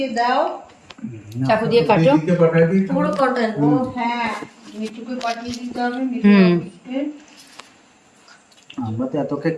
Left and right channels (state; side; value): identical; both; correlation 1.00